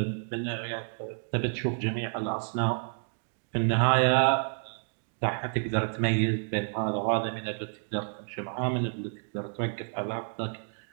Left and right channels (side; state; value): left; silent; 58 dB below the other